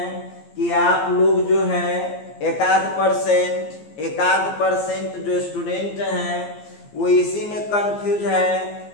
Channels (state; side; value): late; right; 14 ms